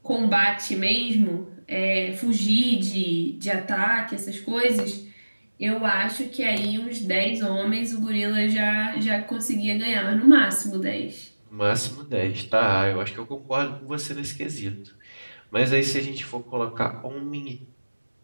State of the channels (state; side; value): inverted; both; correlation -1.00